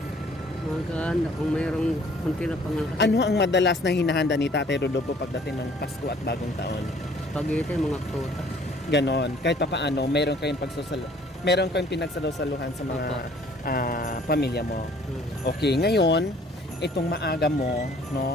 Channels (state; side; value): normal; both; correlation 0.56